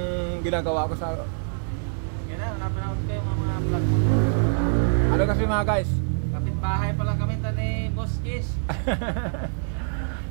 ginagawa ko sa... Yan na, napanood ko yung mga vlog mo. Ano kasi mga guys? Kapitbahay pa lang kami ni Boss Kiss.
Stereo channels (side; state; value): left; silent; digital silence